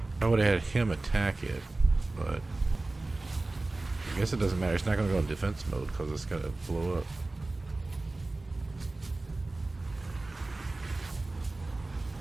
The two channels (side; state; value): left; quieter; 3.1 dB